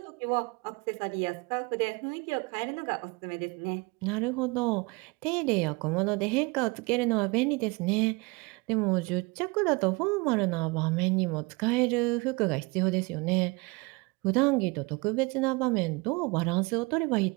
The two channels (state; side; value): quieter; left; 26.4 dB